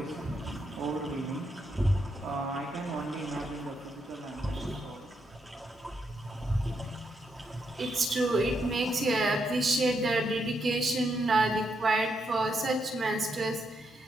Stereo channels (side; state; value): both; normal; correlation 0.80